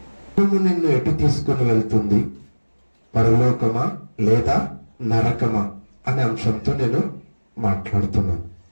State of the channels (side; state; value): both; inverted; correlation -1.00